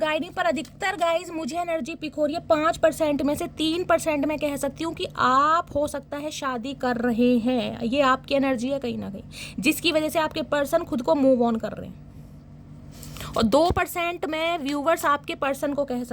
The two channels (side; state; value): both; identical; correlation 1.00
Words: मी। पर अधिकतर गाइज मुझे एनर्जी पिक हो रही है 5% में से 3% मैं कह सकती हूँ कि आप हो सकता है शादी कर रहे हैं, ये आपकी एनर्जी है कहीं ना कहीं, जिसकी वजह से आपके पर्सन खुद को मूव ऑन कर रहे हैं। और 2% मैं व्यूवर्स आपके पर्सन को कह